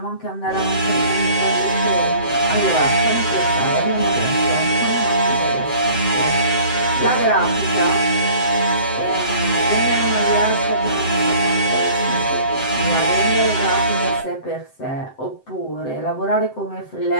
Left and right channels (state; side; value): late; right; 7.7 ms